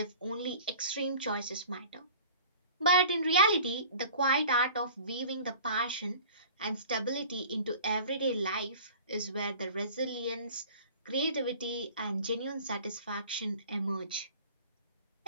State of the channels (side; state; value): both; inverted; correlation -0.44